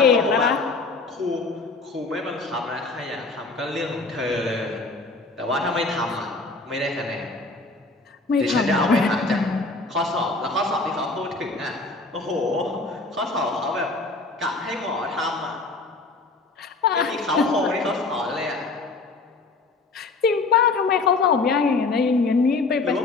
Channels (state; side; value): quieter; right; 3.7 dB